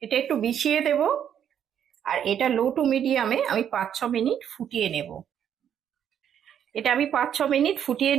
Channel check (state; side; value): quieter; left; 9.2 dB